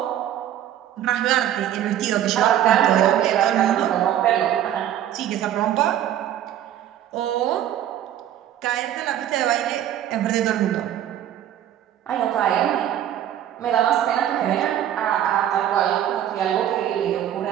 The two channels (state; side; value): quieter; left; 11.2 dB